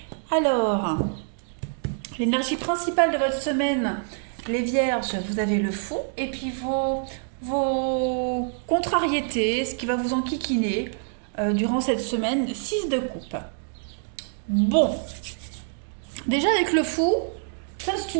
Alors, l'énergie principale de votre semaine, les Vierges, vous avez le fou, et puis vos contrariétés, ce qui va vous enquiquiner durant cette semaine, 6 de coupe. Bon, déjà avec le fou, ça c'est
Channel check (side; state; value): left; silent; digital silence